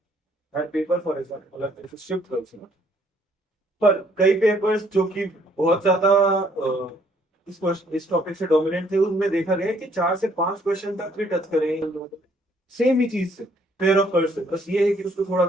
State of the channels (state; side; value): normal; both; correlation 0.65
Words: हर पेपर फॉर एग्जाम्पल मतलब शिफ्ट कर, पर कई पेपर्स जो कि बहुत ज्यादा इस टॉपिक से डोमिनेंट थे उनमें देखा गया कि 4 से 5 क्वेश्चन तक भी टच करें सेम ही चीज से, पेयर ऑफ कर्व से। बस ये है कि उसको थोड़ा